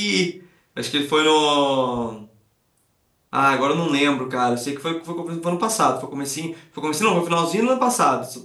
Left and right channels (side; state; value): both; identical; correlation 1.00